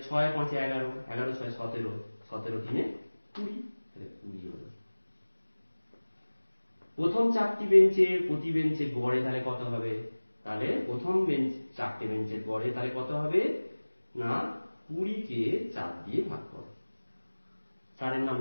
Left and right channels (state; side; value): inverted; both; correlation -1.00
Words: 6 5 11, 11 6 17, 17 3 20, তাহলে 20 হলো। প্রথম 4টি বেঞ্চে প্রতি বেঞ্চে গড়ে তাহলে কত হবে? তাহলে প্রথম বেঞ্চ 4টে বেঞ্চের গড়ে তাহলে কত হবে না, 20কে 4 দিয়ে ভাগ করো, 4-এর